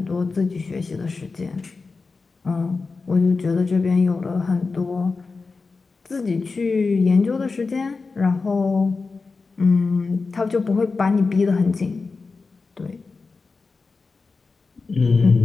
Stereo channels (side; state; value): right; quieter; 4.2 dB